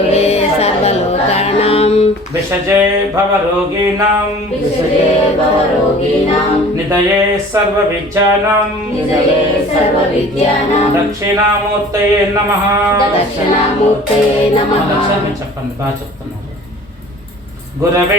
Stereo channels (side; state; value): both; normal; correlation 0.46